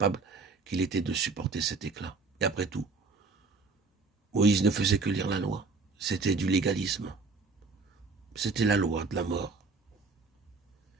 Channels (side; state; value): left; quieter; 4.2 dB